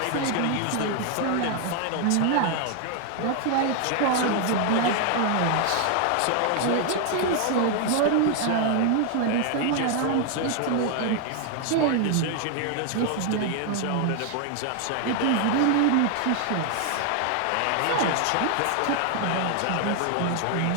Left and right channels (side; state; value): both; different; correlation 0.00